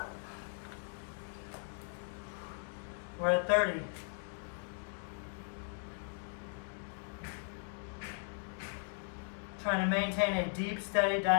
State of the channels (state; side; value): silent; right; 53 dB below the other